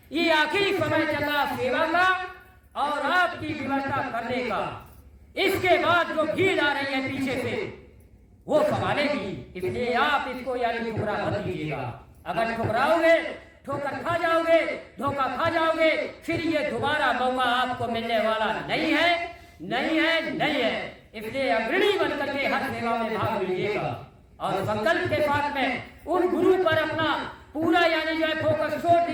ये आखिरी समय चल रहा सेवा का और आपकी व्यवस्था करने का। इसके बाद जो भीड़ आ रही है पीछे से वो संभालेगी, इसलिए आप इसको यानी ठुकरा मत दीजिएगा। अगर ठुकराओगे ठोकर खा जाओगे, धोखा खा जाओगे, फिर ये दोबारा मौका आपको मिलने वाला नहीं है, नहीं है, नहीं है। इसलिए अग्रणी बनकर के हर सेवा में भाग लीजिएगा और संकल्प के साथ में उन गुरु पर अपना पूरा यानी जो है फोकस छोड़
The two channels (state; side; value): identical; both; correlation 1.00